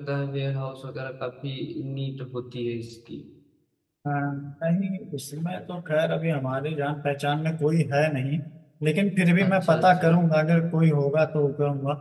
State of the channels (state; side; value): identical; both; correlation 1.00